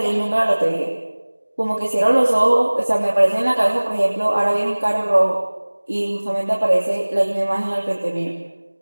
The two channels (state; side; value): inverted; both; correlation -1.00